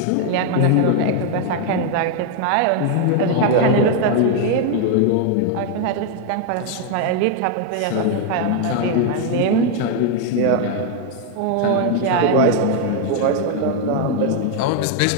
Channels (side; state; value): both; different; correlation 0.00